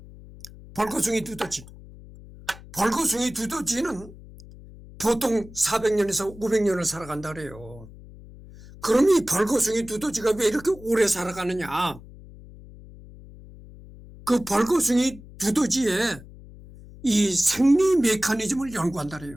벌거숭이 두더지는 보통 400년에서 500년을 살아간다 그래요. 그럼 이 벌거숭이 두더지가 왜 이렇게 오래 살아가느냐? 그 벌거숭이 두더지의 이 생리 메커니즘을 연구한다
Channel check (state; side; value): noise; left; hum, 18 dB below the sound